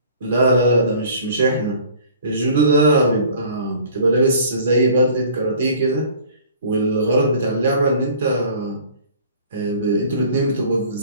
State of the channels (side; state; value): both; inverted; correlation -0.50